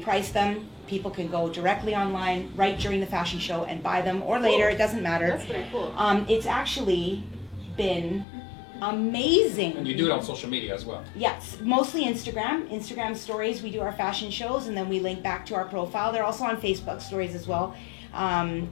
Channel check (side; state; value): right; drops out; at 8.2 s